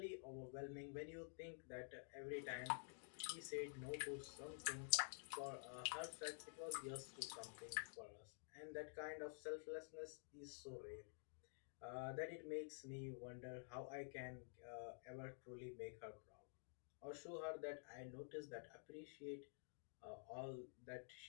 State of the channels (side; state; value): right; silent; digital silence